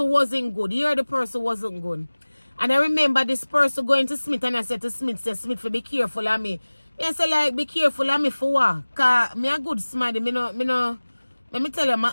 wasn't good. Here the person wasn't good. And I remember this person going to Smith, and I said to Smith, for be careful of me. I said, like, be careful of me for what? Because me a good somebody. Let me tell you, my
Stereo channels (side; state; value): both; inverted; correlation -1.00